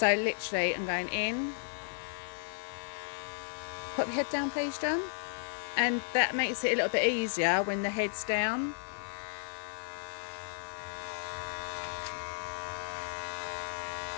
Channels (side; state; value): right; silent; 55 dB below the other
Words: literally, I'm going in. Put your head down, please, John. And that makes it a little bit easier when the head's down.